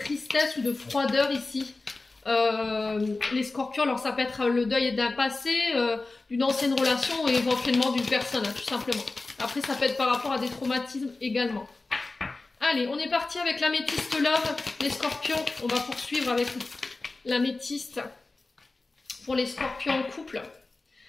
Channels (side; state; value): right; quieter; 3.4 dB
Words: ou de froideur ici. Les scorpions, alors ça peut être le deuil d'un passé, d'une ancienne relation ou éventuellement d'une personne, hein, tout simplement. Après, ça peut être par rapport à des traumatismes également. Allez, on est parti avec l'améthyste love, les scorpions. On va poursuivre avec l'améthyste pour les scorpions en couple.